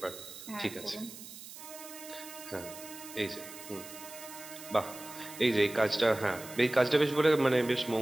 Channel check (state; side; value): noise; right; hiss, 14 dB below the sound